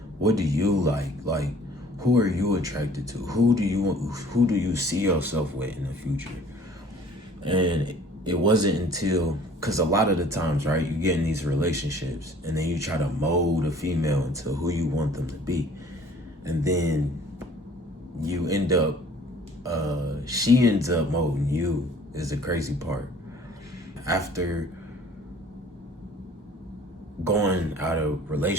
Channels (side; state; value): both; normal; correlation 0.52